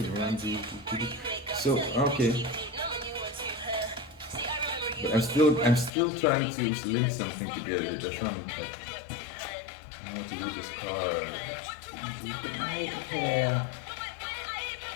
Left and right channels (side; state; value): right; drops out; at 5.9 s